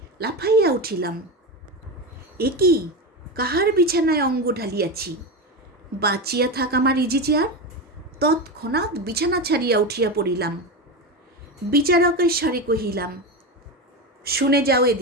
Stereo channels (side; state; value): both; normal; correlation 0.18